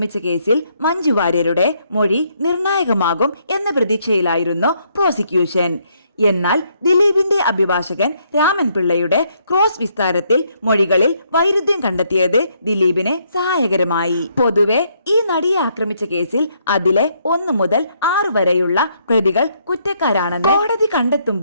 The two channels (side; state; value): both; inverted; correlation -0.72